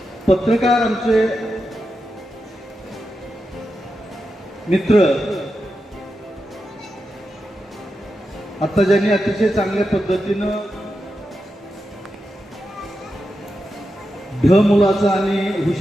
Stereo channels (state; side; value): normal; both; correlation 0.88